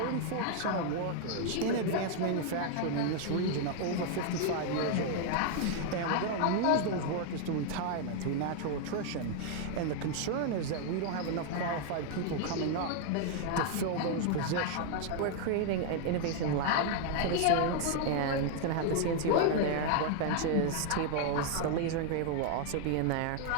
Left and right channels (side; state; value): both; different; correlation 0.00